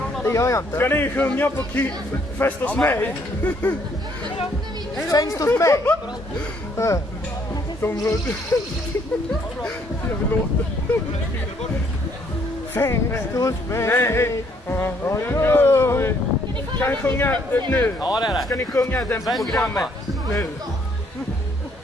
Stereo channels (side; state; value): both; normal; correlation 0.67